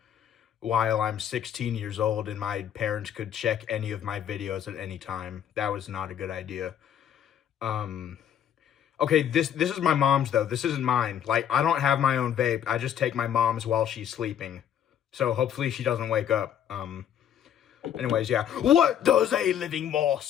while I'm 16 years old and my parents could check any of my videos at any time. That was not a good idea. Okay, this is my mom's, though. This isn't mine. Like, I don't have my own vape. I just take my mom's while she's sleeping. So hopefully she doesn't wake up. Anyways, yeah. What does a living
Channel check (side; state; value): right; quieter; 9.6 dB